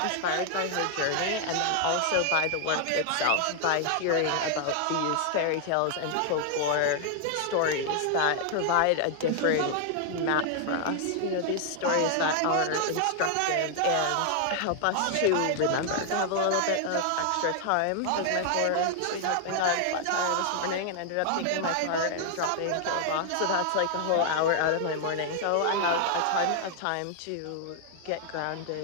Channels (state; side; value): different; both; correlation 0.00